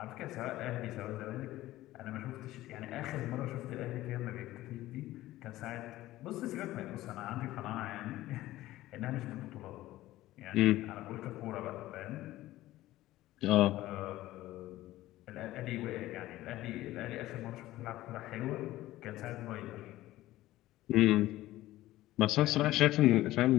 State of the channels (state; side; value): quieter; right; 16.0 dB